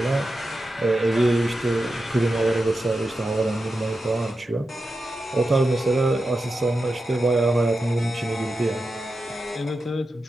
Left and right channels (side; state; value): both; normal; correlation 0.90